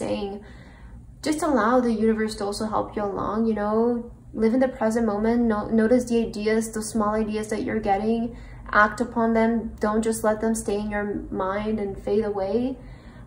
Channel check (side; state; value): both; identical; correlation 1.00